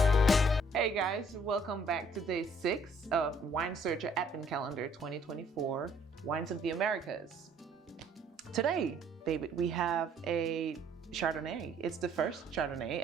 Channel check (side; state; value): both; normal; correlation 0.62